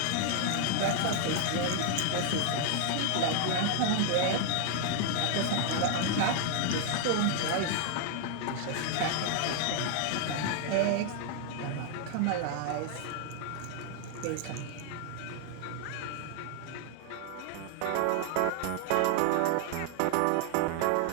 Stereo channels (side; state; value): both; different; correlation 0.00